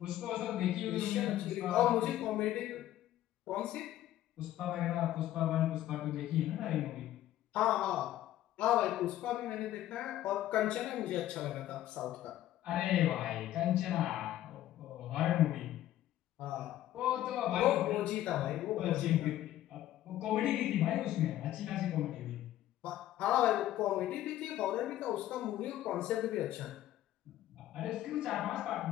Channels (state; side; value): quieter; right; 13.4 dB